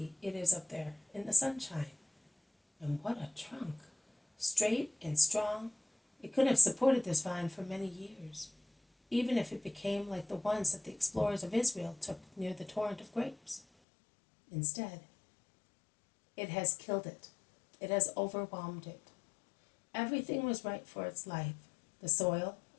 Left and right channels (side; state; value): right; drops out; at 13.7 s